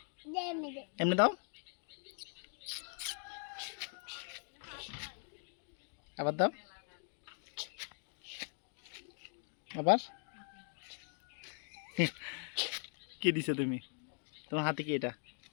এমনি দাও, আবার দাও, আবার। কি দিছো তুমি? তোমার হাতে কি এটা?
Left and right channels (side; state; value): right; silent; 51 dB below the other